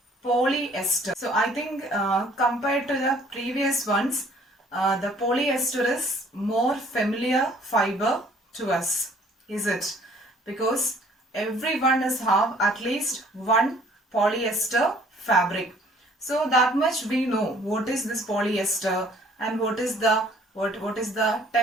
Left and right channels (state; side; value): normal; both; correlation 0.58